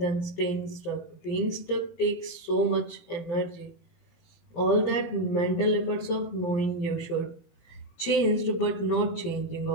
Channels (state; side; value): late; right; 17 ms